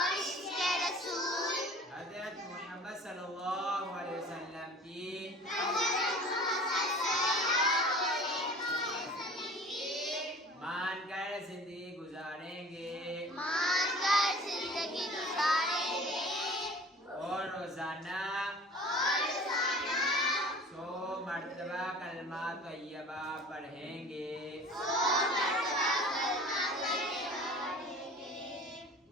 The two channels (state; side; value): normal; both; correlation 0.44